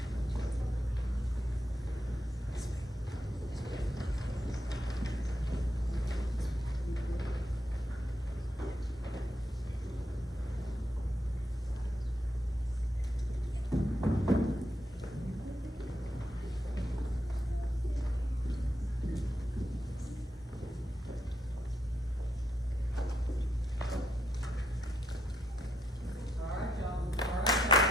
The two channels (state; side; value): normal; both; correlation 0.80